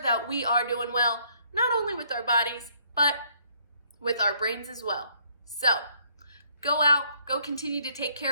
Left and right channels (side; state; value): both; inverted; correlation -0.66